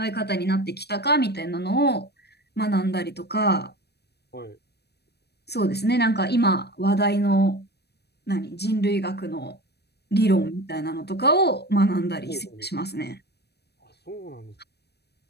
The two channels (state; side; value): late; right; 0.48 ms